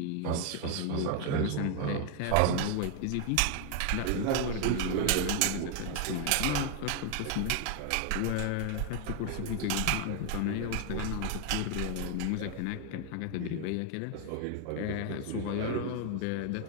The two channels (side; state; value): both; different; correlation 0.01